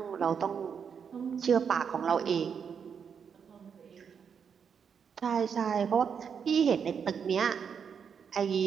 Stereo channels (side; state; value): left; quieter; 6.9 dB